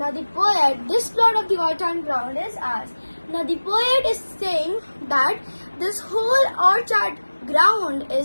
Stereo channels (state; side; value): inverted; both; correlation -1.00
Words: this plot of the orchard ground is ours. Now the poet is saying that this whole orchard ground